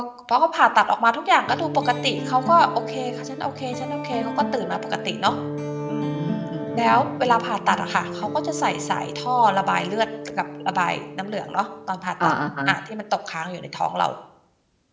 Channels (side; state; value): both; identical; correlation 1.00